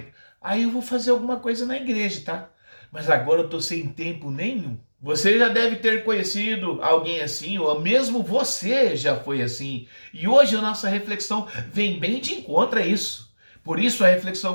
Aí eu vou fazer alguma coisa na igreja, tá? Mas agora eu tô sem tempo nenhum. Você já deve ter conhecido alguém assim, ou mesmo você já foi assim. E hoje a nossa reflexão vem bem de encontro a isso. Por isso a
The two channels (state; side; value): inverted; both; correlation -1.00